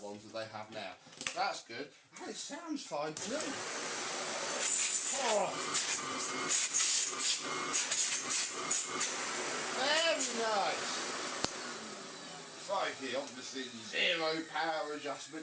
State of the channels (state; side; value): identical; both; correlation 1.00